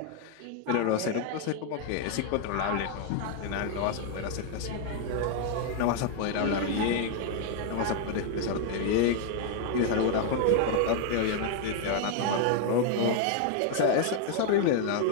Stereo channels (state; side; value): different; both; correlation 0.00